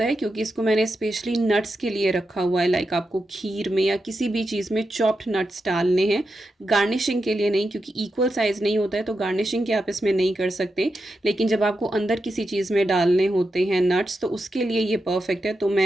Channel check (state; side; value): normal; both; correlation 0.88